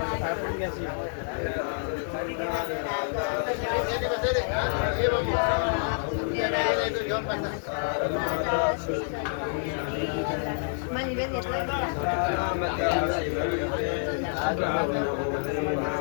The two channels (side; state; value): right; silent; 59 dB below the other